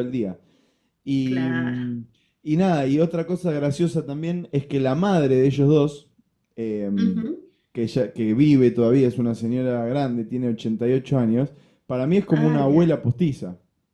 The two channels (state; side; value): identical; both; correlation 1.00